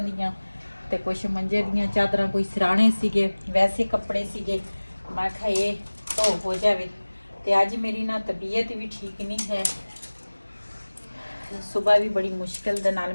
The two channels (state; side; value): inverted; both; correlation -1.00